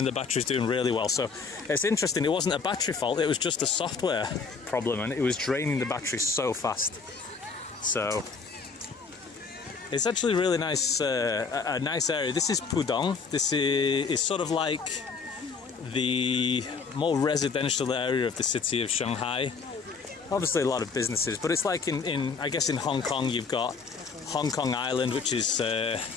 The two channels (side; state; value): right; quieter; 5.1 dB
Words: the battery's doing really well. So it's interesting, it wasn't a battery fault, it was just a software problem, and it was draining the battery so fast. So it's actually really nice, a nice area. This is Pudong. This is sort of like the more residential area of the city of Shanghai. Obviously a lot of businesses, but it's like I guess in Hong Kong, you've got Hong Kong Island, which is a